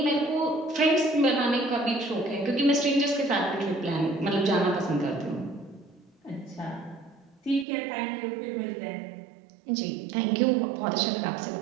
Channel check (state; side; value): drops out; left; at 7.7 s